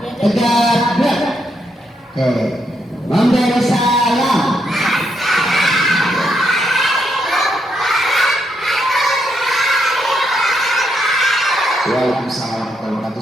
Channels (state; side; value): normal; both; correlation 0.78